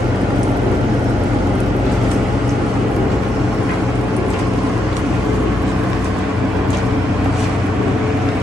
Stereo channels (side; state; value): both; normal; correlation 0.81